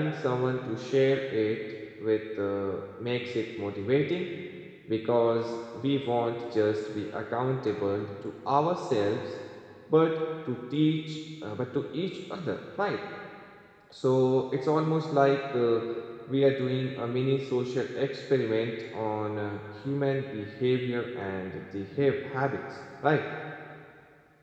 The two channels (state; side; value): identical; both; correlation 1.00